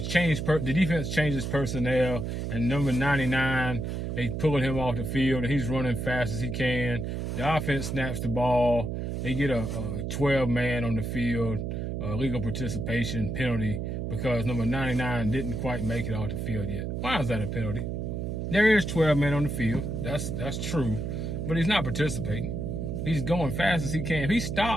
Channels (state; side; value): noise; right; hum, 3 dB below the sound